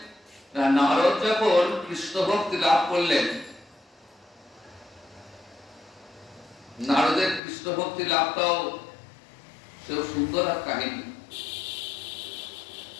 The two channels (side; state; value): right; drops out; at 7.4 s